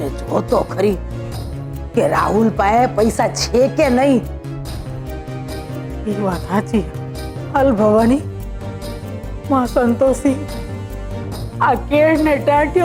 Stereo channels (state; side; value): identical; both; correlation 1.00